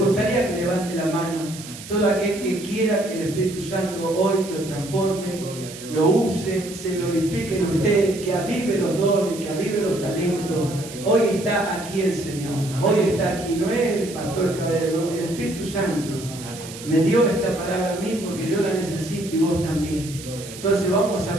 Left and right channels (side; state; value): right; noise; hiss, 14 dB below the sound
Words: que levante la mano todo aquel que quiera que el Espíritu Santo hoy lo transforme, lo use, se glorifique en usted, que avive los dones, que avive los talentos. Hoy está aquí el Señor, hoy está aquí, no es el pastor Caballero, no, el Espíritu Santo me dio esta palabra a mí porque yo la necesito y vos también. Entonces vamos